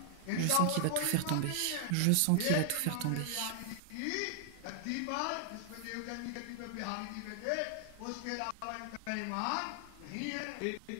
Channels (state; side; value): different; both; correlation -0.01